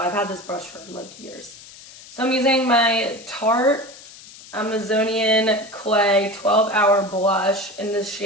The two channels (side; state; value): left; noise; hiss, 19 dB below the sound